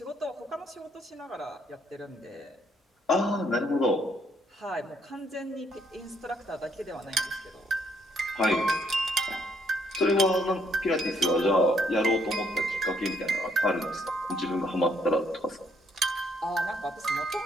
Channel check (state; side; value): normal; both; correlation 0.70